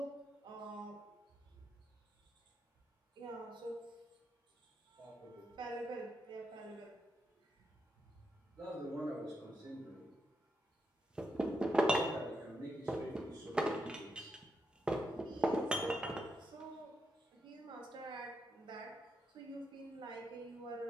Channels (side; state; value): both; normal; correlation 0.83